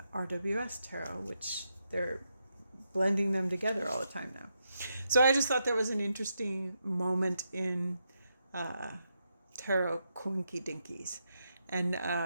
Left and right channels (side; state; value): both; inverted; correlation -0.83